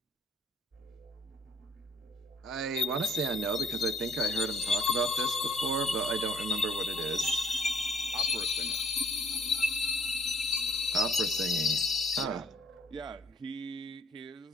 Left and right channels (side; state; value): both; normal; correlation 0.62